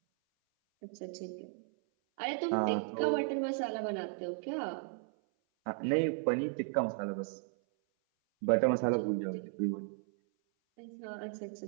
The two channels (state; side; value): silent; left; 54 dB below the other